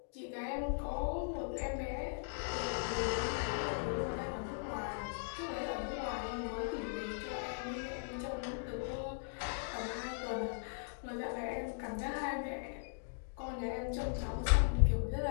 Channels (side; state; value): right; silent; digital silence